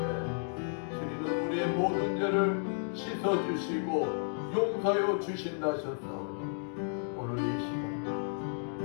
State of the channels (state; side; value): silent; right; digital silence